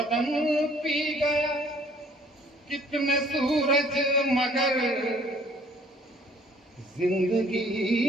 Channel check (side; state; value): both; normal; correlation 0.58